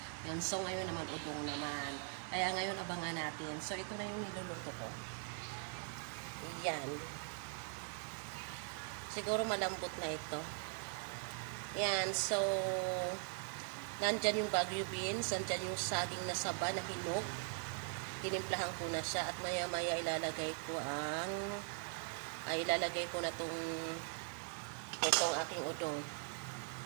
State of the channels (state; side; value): silent; left; 50 dB below the other